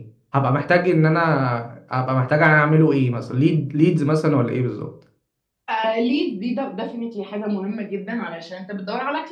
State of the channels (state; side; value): identical; both; correlation 1.00